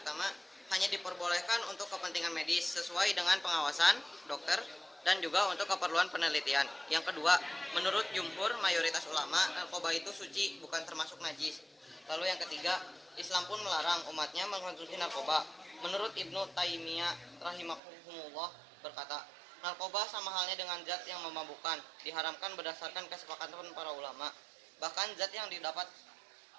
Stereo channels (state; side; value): drops out; left; at 17.8 s